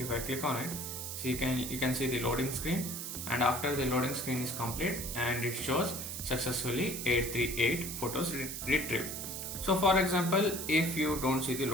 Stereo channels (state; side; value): noise; right; hiss, 6 dB below the sound